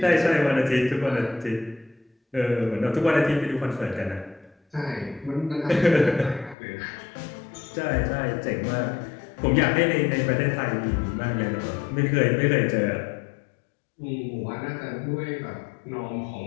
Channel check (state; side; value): drops out; right; at 6.6 s